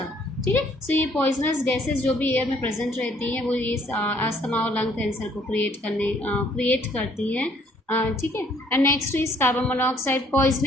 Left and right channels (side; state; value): both; normal; correlation 0.63